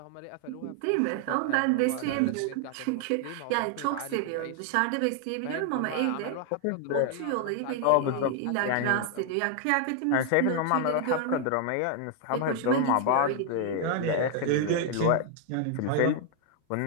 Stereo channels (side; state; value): both; different; correlation 0.00